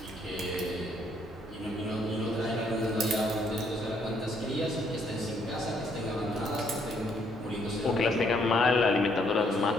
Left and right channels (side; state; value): both; normal; correlation 0.69